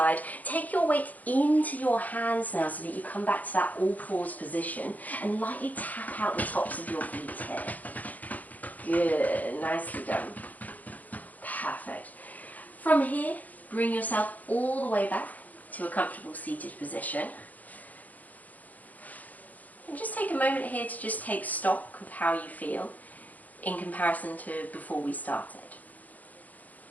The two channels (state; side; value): late; right; 0.079 ms